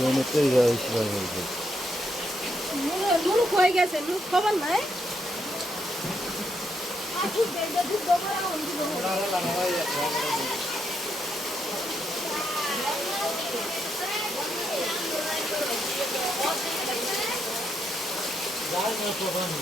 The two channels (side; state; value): both; normal; correlation 0.78